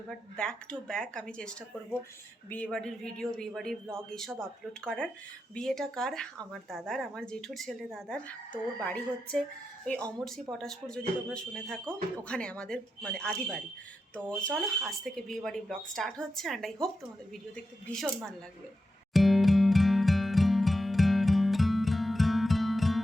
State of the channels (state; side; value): normal; both; correlation 0.89